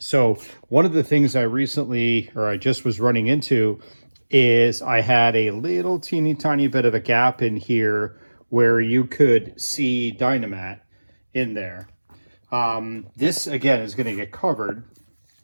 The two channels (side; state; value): both; inverted; correlation -1.00